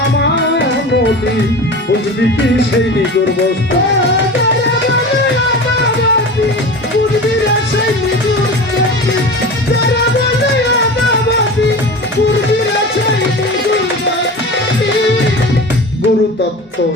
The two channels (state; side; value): normal; both; correlation 0.32